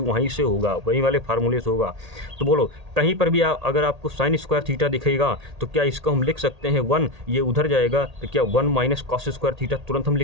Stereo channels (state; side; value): late; left; 1.8 ms